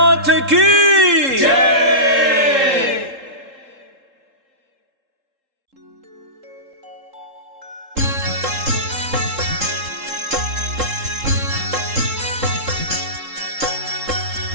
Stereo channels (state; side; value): late; left; 3.7 ms